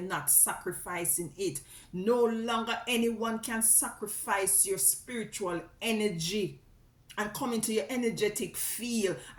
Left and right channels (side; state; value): both; identical; correlation 1.00